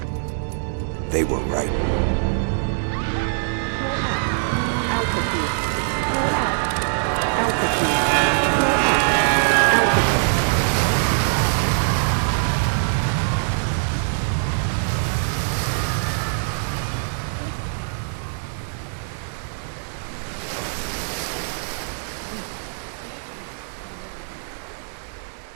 They were right.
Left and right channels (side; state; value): left; silent; 59 dB below the other